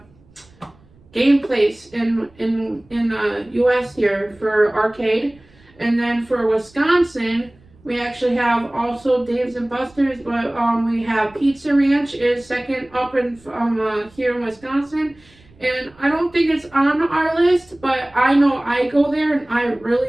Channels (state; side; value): noise; right; rumble, 28 dB below the sound